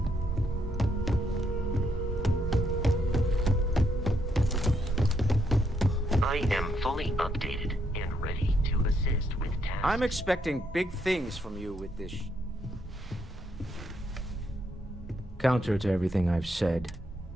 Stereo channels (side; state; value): both; normal; correlation 0.76